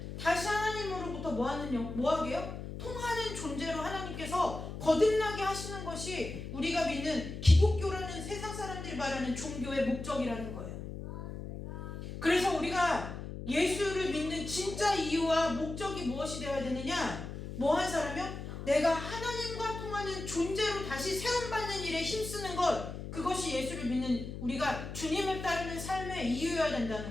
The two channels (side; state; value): left; noise; hum, 8 dB below the sound